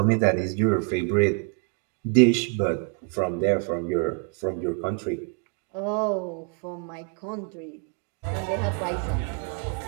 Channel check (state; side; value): quieter; left; 36.1 dB